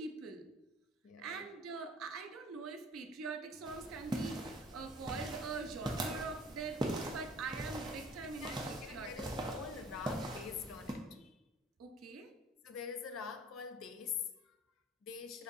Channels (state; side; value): normal; both; correlation 0.50